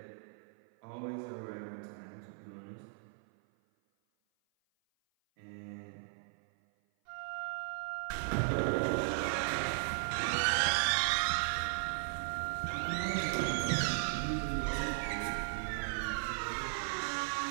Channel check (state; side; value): silent; left; 53 dB below the other